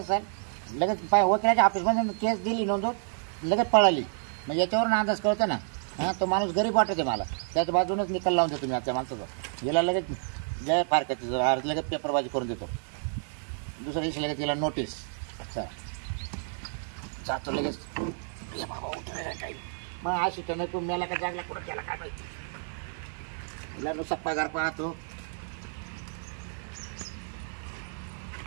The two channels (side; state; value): left; silent; digital silence